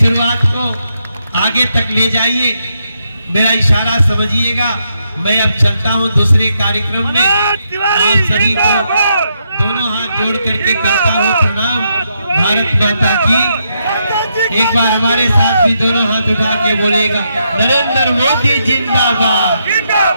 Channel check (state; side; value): inverted; both; correlation -0.80